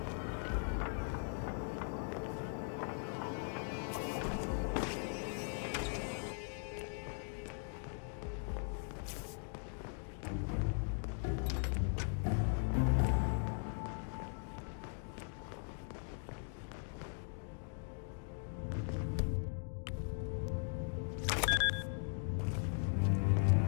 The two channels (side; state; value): right; silent; 51 dB below the other